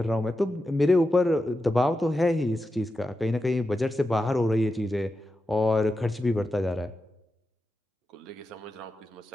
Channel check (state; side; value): normal; both; correlation 0.90